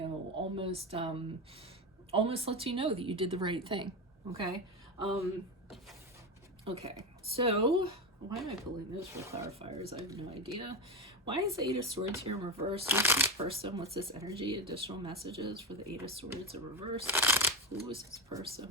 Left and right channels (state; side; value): normal; both; correlation 0.16